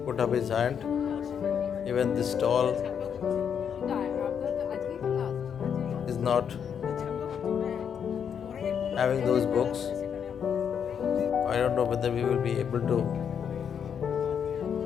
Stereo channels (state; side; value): quieter; right; 7.7 dB